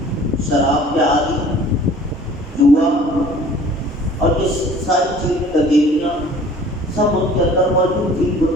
شراب کے عادی، جوا اور یہ ساری چیزیں تغیریاں سب ان کے اندر موجود تھی،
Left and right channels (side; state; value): both; normal; correlation 0.49